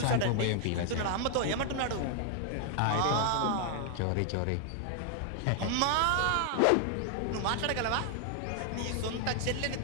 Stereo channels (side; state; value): both; different; correlation 0.00